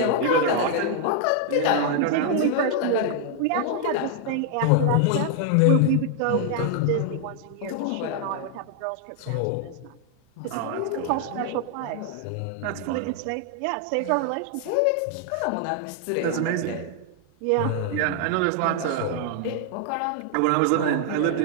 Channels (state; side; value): different; both; correlation 0.00